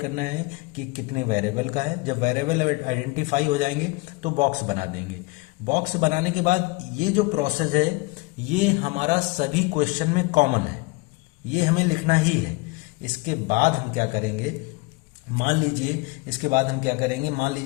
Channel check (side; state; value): right; quieter; 24.5 dB